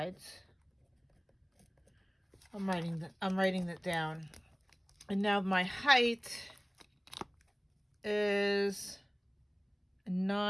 I'm writing that down. And now my height is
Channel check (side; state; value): both; identical; correlation 1.00